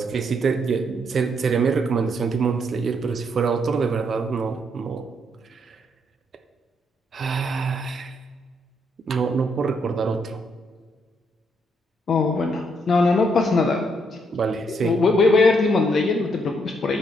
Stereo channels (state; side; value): normal; both; correlation 0.74